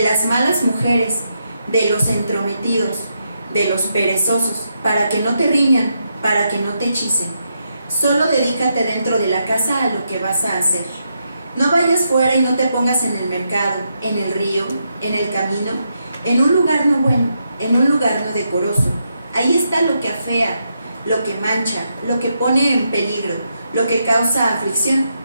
las malas mujeres, de los entrometidos, de los perezosos, para que no te riñan, para que no te hechicen. Solo dedícate dentro de la casa a lo que vas a hacer. No vayas fuera y no te pongas en el mercado, en el río, en el camino, en un lugar no bueno, en un lugar no decoroso. Ahí está lo que afea, lo que mancha, lo que pone en peligro, lo que causa aflicción,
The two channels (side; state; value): both; inverted; correlation -0.82